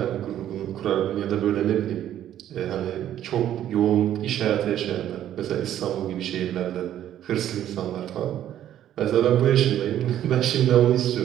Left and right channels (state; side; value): quieter; left; 11.5 dB